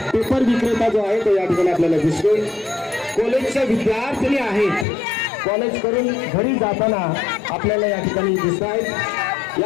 पेपर विक्रेता जो आहे तो या ठिकाणी आपल्याला दिसतोय। कॉलेजचे विद्यार्थी आहेत, कॉलेज करून घरी जाताना आपल्याला या ठिकाणी दिसत आहेत।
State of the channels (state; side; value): drops out; right; at 4.9 s